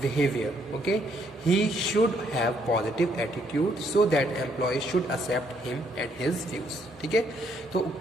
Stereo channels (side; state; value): both; normal; correlation 0.70